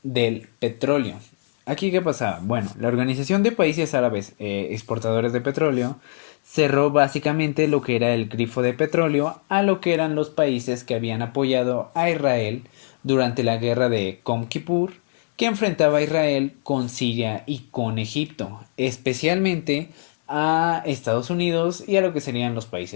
del petróleo. ¿Aquí qué pasaba? Bueno, la Organización de Países Árabes Exportadores de Petróleo cerró básicamente lo que era el grifo de petróleo a lo que eran los países que habían apoyado a Israel durante la guerra de Yom Kippur, que enfrentaba a Israel con Siria y con Egipto, especialmente a Estados Unidos y a lo que serían los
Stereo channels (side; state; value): right; silent; digital silence